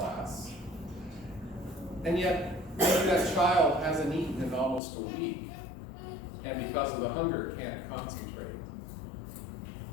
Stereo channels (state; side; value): drops out; right; at 4.8 s